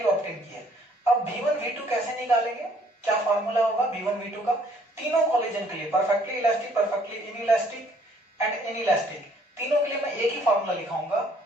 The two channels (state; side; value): normal; both; correlation 0.62